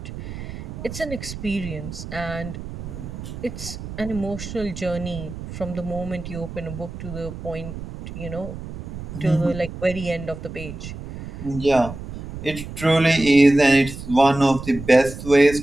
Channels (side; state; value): right; noise; rumble, 10 dB below the sound